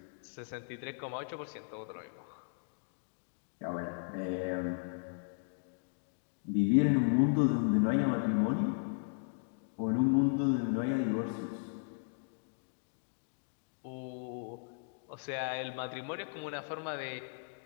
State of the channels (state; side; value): silent; right; digital silence